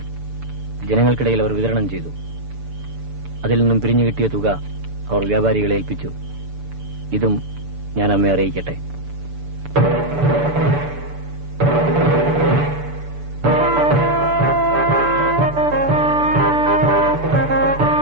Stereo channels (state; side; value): late; left; 6.9 ms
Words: ജനങ്ങൾക്കിടയിൽ അവർ വിതരണം ചെയ്തു. അതിൽ നിന്നും പിരിഞ്ഞു കിട്ടിയ തുക അവർ വ്യാപാരികളെ ഏൽപ്പിച്ചു. ഇതും ഞാൻ അമ്മയെ അറിയിക്കട്ടെ.